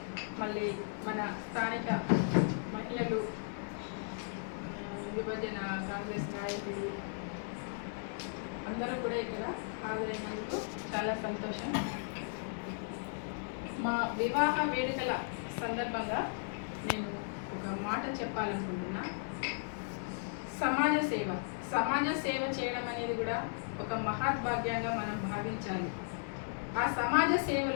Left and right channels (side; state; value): right; silent; digital silence